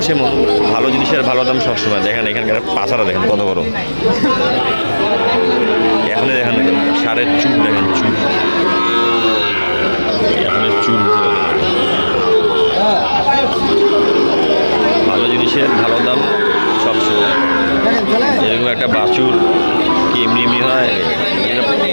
সেমন। ভালো জিনিসের ভালো দাম সবসময়। দেখেন এখানকার পাছারা দেখেন কত বড়। এখনই দেখেন সারের চুল দেখেন, চুল এখনের চুল। ভালো জিনিসের ভালো দাম সবসময়। এরকম একটা বাছুর কি এমনি এমনি হয়?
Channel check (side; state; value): both; inverted; correlation -1.00